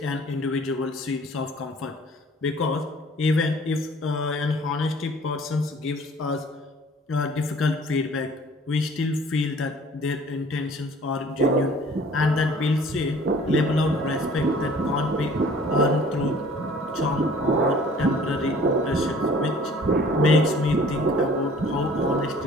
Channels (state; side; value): normal; both; correlation 0.51